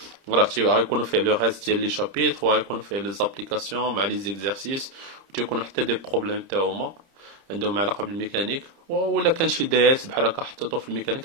راه غيكونوا فيه لو راست ديال لي شابيتر وغيكونوا فيه لي زابليكاسيون مع لي زيكزارسيس وتيكونوا حتى دي بروبليم تاهما عندهم علاقه بالميكانيك ولا كان شي داس بحال هكا حطيتو في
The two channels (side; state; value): left; late; 30 ms